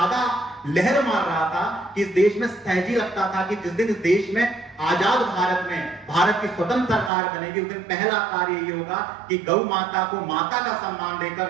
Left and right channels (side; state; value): left; drops out; at 7.1 s